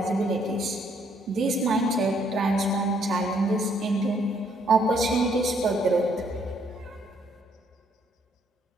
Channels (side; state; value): both; normal; correlation 0.69